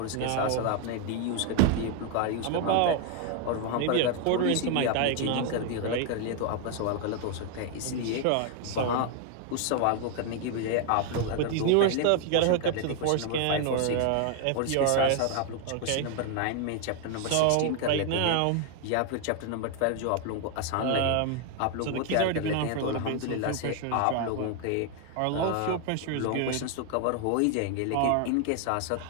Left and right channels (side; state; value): both; different; correlation 0.00